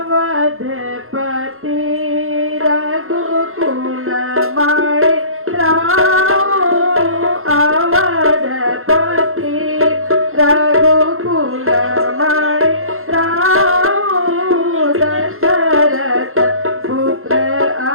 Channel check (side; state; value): left; late; 0.62 ms